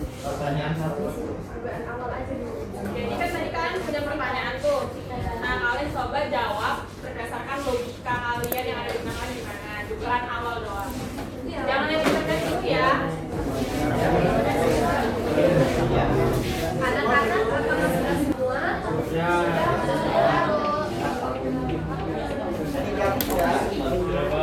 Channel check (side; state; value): both; identical; correlation 1.00